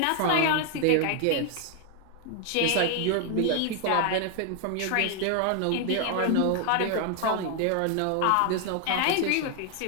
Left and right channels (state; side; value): different; both; correlation 0.00